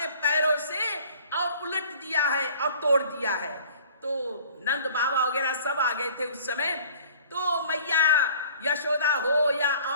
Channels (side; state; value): both; inverted; correlation -0.50